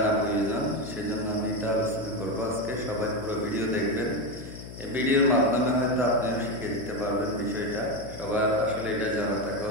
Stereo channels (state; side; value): noise; left; hum, 13 dB below the sound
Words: প্রয়োজন। সেজন্য আমি এটা আলোচনা করব আজকে। সবাই পুরো ভিডিও দেখবেন। এই ভিডিওর মাধ্যমে হয়তো আপনিও শিখে দিতে পারবেন বিষয়টা। সবার আসলে এটা জানা থাকা